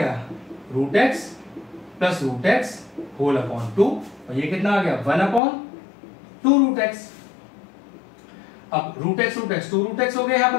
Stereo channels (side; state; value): right; drops out; at 5.4 s